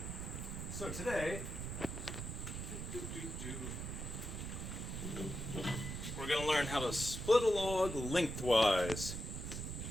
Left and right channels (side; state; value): right; noise; rumble, 5 dB below the sound